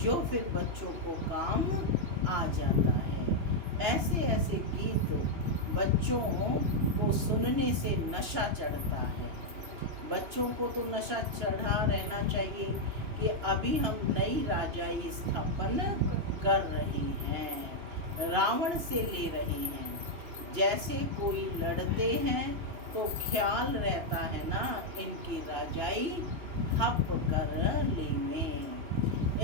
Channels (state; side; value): late; left; 2.9 ms